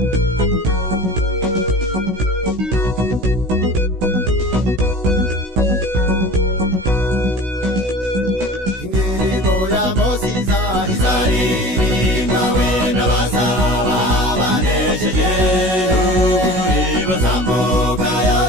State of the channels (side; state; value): left; late; 16 ms